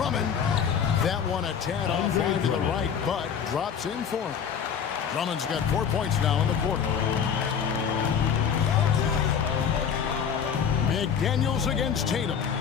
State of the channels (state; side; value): quieter; right; 7.4 dB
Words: That one a tad off line to the right, but drops in for him. Drummond's got 4 points now in the quarter. McDaniels against Tatum.